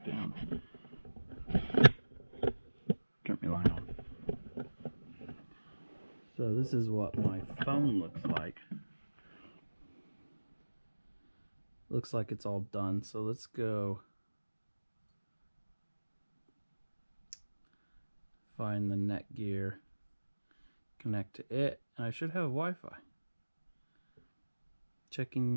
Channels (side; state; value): both; inverted; correlation -1.00